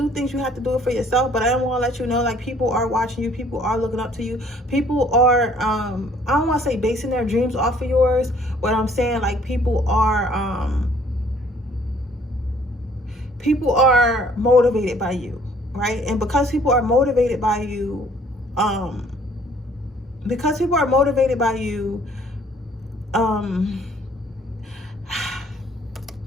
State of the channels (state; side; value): normal; both; correlation 0.59